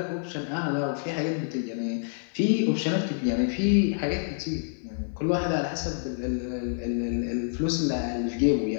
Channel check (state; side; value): silent; right; digital silence